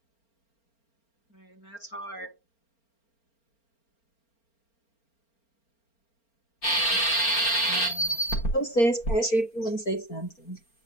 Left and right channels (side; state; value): right; late; 4.4 ms